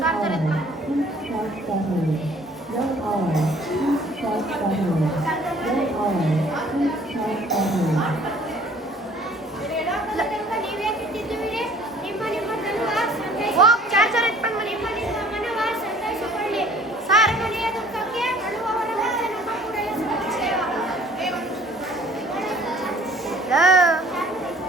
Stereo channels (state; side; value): normal; both; correlation 0.54